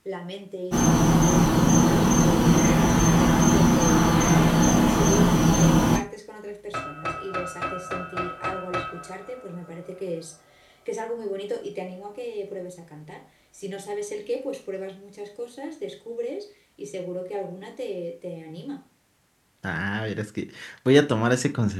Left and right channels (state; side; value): identical; both; correlation 1.00